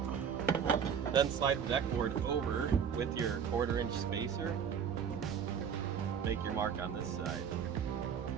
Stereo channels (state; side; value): quieter; left; 7.5 dB